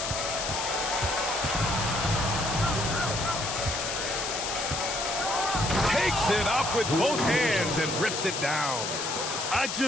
Takes it up with both hands and rips it down. I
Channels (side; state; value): left; noise; hiss, 3 dB below the sound